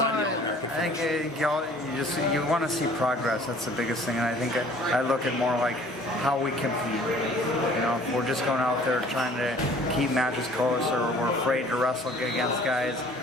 the All-American finish? I think you want to see progress. That's the biggest thing, and I think I look at more like how we compete. If we're just going out there trying to keep matches close, or we're afraid to wrestle against guys,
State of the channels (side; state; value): both; normal; correlation 0.52